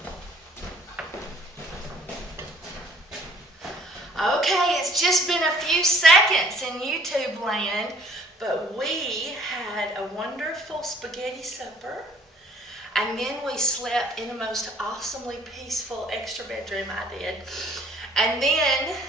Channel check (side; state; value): both; normal; correlation 0.57